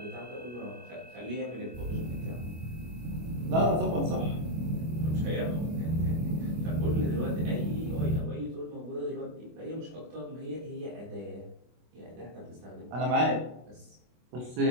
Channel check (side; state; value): left; late; 25 ms